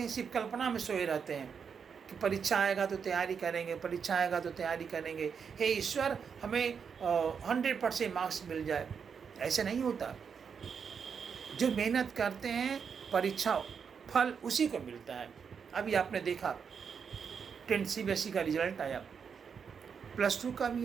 हैं, सिर्फ कल्पना में सोए रहते हैं कि परीक्षा आएगा तो तैयारी करेंगे, परीक्षा आएगा तो तैयारी करेंगे, हे ईश्वर हमें 100% मार्क्स मिल जाए। ऐसे नहीं होता। जो मेहनत करते हैं, परीक्षा फल उसी को मिलता है। अभी आपने देखा 10 CBSE का रिजल्ट आया, +2 का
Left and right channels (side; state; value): left; quieter; 6.5 dB